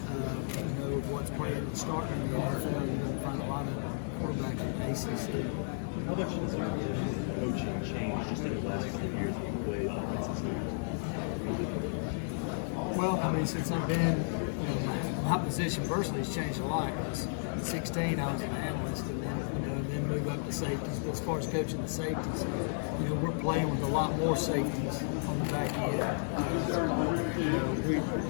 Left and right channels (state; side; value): silent; right; digital silence